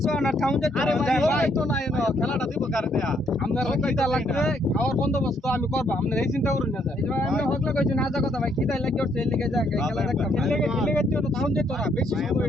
খেলাটা দিব কারে দেয়া আপনারা কিটা লাগবে খাওয়ার বন্দোবস্ত আমি করব আপনারা এই চিন্তা করুন না আমি হকলা কইছি না যা কথা ভাই কিটা লাগি ওর ছেলে যা খেলা দেখতাম খেলে তো টাউন যেত না বেশি সময়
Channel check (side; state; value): both; normal; correlation 0.70